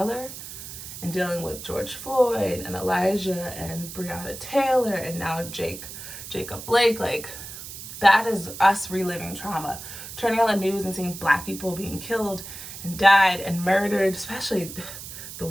and dealing with George Floyd and Elijah and Breonna Taylor and now Jacob Blake. Like, that is us reliving trauma. Turning on the news and seeing Black people being killed and died and murdered, especially the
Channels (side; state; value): right; noise; hiss, 11 dB below the sound